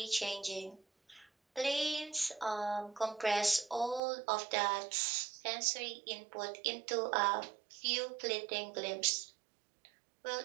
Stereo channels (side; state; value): left; drops out; at 4.0 s